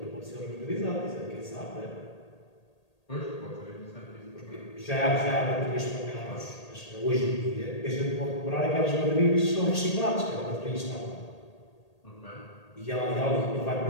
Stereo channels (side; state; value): right; late; 1.8 ms